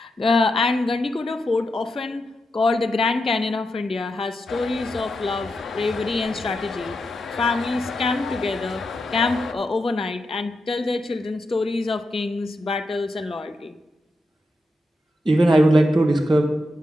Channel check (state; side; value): normal; both; correlation 0.86